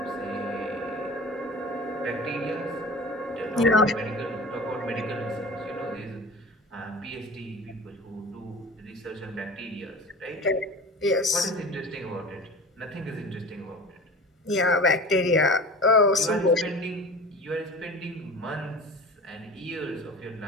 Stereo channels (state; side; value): normal; both; correlation 0.36